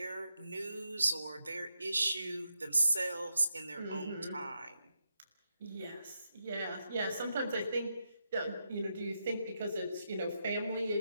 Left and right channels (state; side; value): inverted; both; correlation -0.84